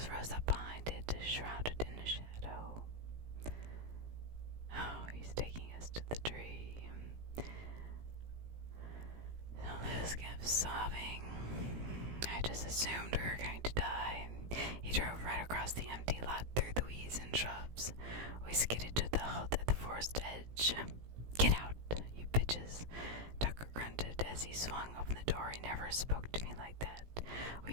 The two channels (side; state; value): left; late; 17 ms